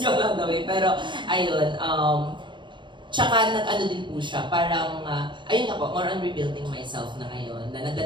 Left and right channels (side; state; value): left; late; 0.23 ms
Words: yung lang daw eh. Pero ayun, tsaka nag-ano din po siya, parang, ayun nga po, more on rebuilding myself na ngayon. Na